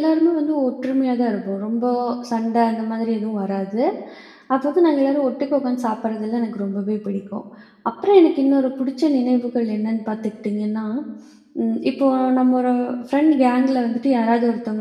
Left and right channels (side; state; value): both; identical; correlation 1.00